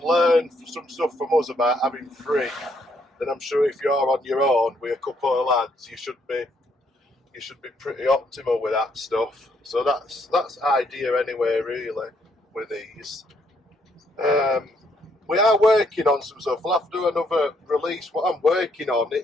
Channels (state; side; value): normal; both; correlation 0.71